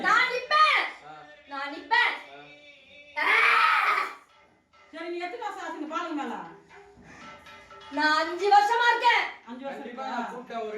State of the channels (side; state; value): both; identical; correlation 1.00